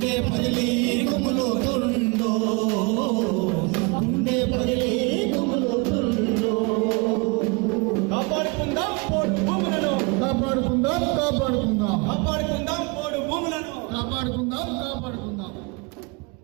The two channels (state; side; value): quieter; left; 29.3 dB